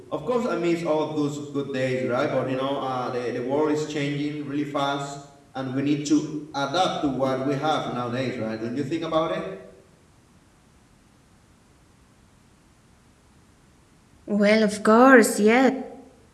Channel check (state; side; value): identical; both; correlation 1.00